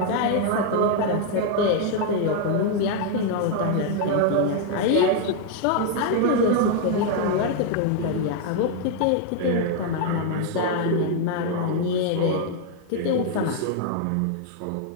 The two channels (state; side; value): different; both; correlation 0.00